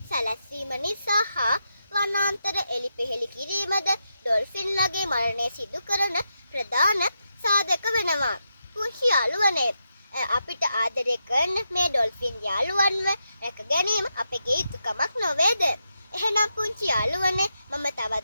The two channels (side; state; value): both; inverted; correlation -0.85